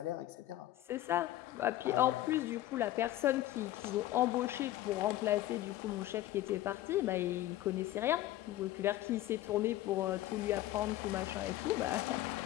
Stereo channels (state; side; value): quieter; right; 14.6 dB